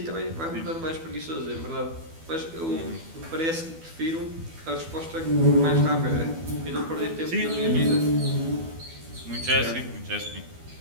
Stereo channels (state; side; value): late; left; 12 ms